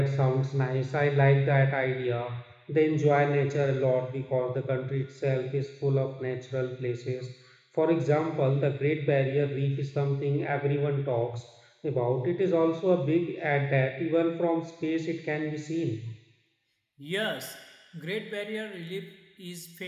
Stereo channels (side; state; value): both; identical; correlation 1.00